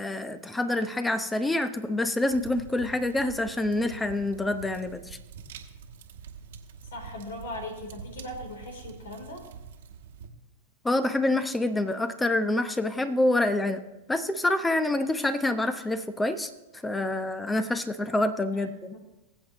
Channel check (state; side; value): normal; both; correlation 0.81